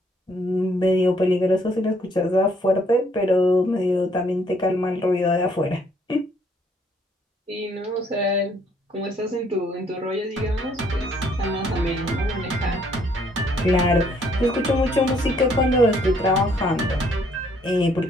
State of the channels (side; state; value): both; normal; correlation 0.66